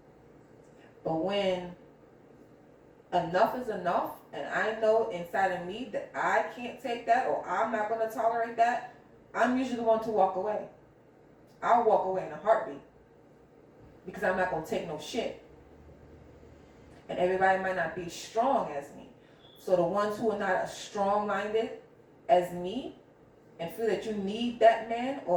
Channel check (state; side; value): identical; both; correlation 1.00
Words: But when enough is enough, and I know inside of me that I can't take that, or I'm not going to tolerate that, I'm usually the one to walk away. I'll walk away in a heartbeat. Because I'm not going to take no shit. And everybody might not be strong as me. So the ones who are not as strong-minded as me, and feel that you need that man,